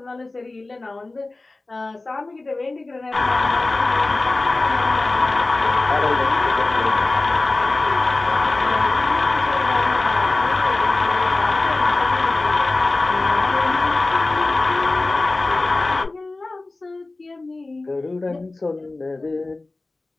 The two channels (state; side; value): quieter; right; 3.2 dB